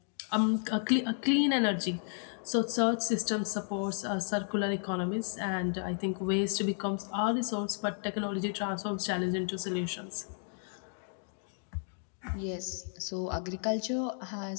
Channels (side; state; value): right; silent; 56 dB below the other